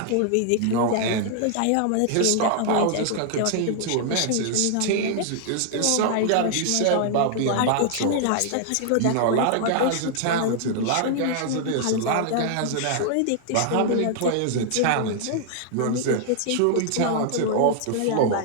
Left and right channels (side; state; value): both; different; correlation 0.00